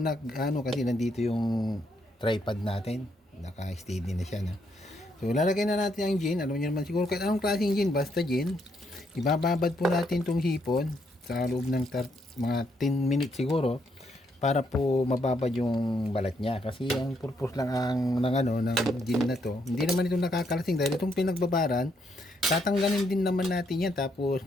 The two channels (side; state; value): both; normal; correlation 0.75